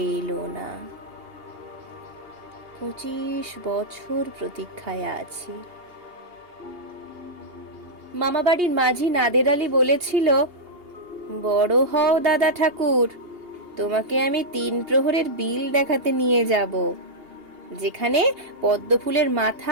এলো না। 25 বছর প্রতীক্ষায় আছি। মামাবাড়ির মাঝি নাদের আলী বলেছিল, বড় হও দাদা ঠাকুর, তোমাকে আমি 3 প্রহরের বিল দেখাতে নিয়ে যাব, যেখানে পদ্মফুলের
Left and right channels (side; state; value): left; late; 2.8 ms